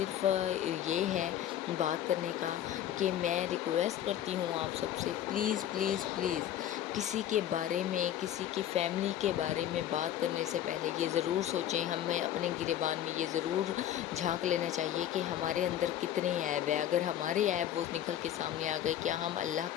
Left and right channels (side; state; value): right; quieter; 11.4 dB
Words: یہ ہے بات کرنے کا کہ میں ریکویسٹ کرتی ہوں آپ سب سے، پلیز پلیز پلیز کسی کے بارے میں، کسی کی فیملی کے بارے میں بات کرنے سے پہلے یہ ضرور سوچیں، ہمیں اپنے گریبان میں یہ ضرور جھانک لینا چاہیے کہ ہمارے اندر کتنے عیب ہیں۔ اگر ہمارے عیب وہ نکل کے سامنے آ گئے، کیا ہم اللہ